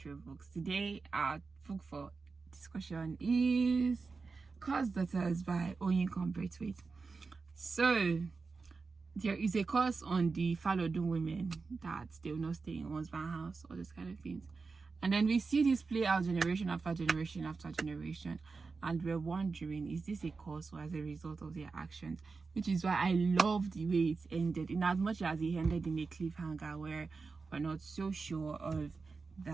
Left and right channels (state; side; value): quieter; left; 4.4 dB